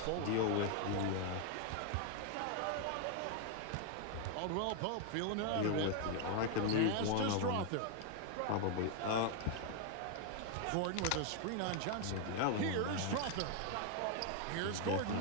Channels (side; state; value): both; different; correlation 0.00